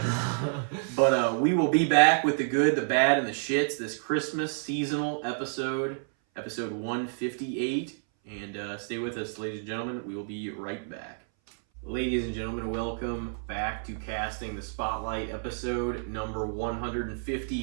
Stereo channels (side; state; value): left; silent; 58 dB below the other